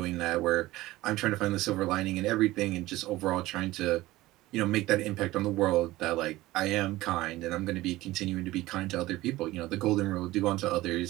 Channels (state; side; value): quieter; left; 17.8 dB